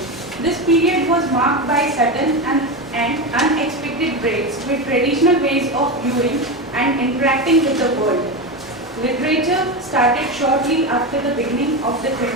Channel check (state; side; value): normal; both; correlation 0.17